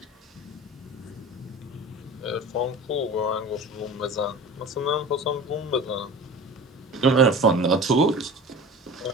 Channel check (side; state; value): both; normal; correlation 0.36